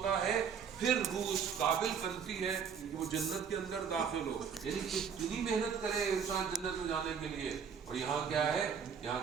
है, फिर रूह उस काबिल बनती है कि वो जन्नत के अंदर दाखिल हो। यानी कितनी मेहनत करे इंसान जन्नत में जाने के लिए। और यहाँ क्या है, यहाँ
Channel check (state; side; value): quieter; left; 6.9 dB